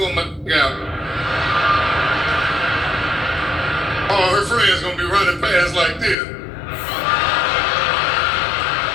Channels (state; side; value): drops out; right; at 6.2 s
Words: my out. All her friends gonna be running past like this.